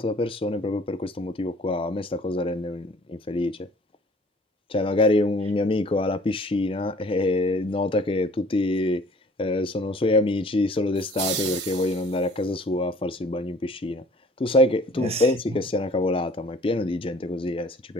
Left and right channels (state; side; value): normal; both; correlation 0.52